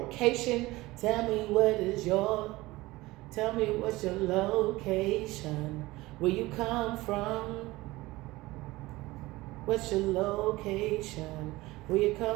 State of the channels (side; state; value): left; quieter; 19.7 dB